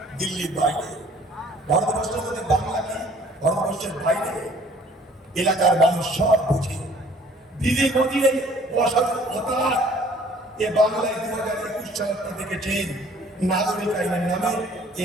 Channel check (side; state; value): both; normal; correlation 0.55